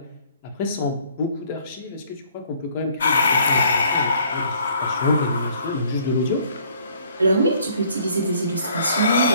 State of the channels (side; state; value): both; inverted; correlation -0.60